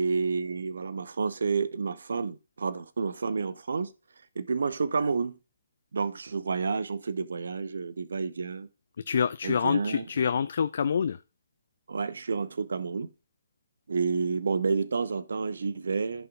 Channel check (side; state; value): both; inverted; correlation -0.83